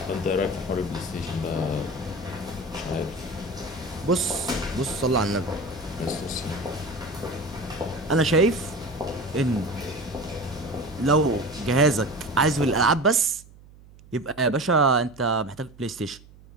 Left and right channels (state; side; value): noise; right; hum, 23 dB below the sound